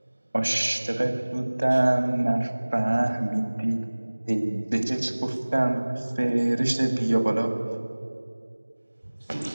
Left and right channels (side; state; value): both; inverted; correlation -1.00